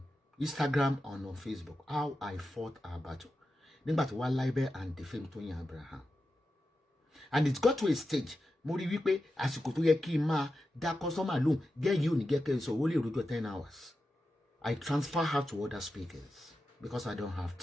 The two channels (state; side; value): normal; both; correlation 0.90